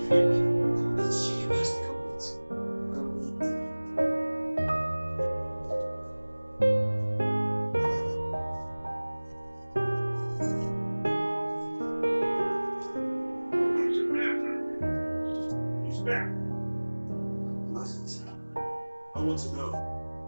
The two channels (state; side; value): inverted; both; correlation -1.00